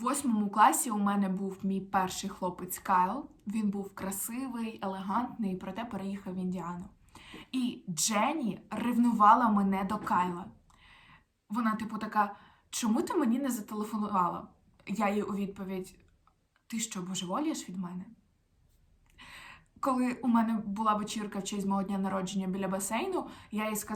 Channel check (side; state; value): both; identical; correlation 1.00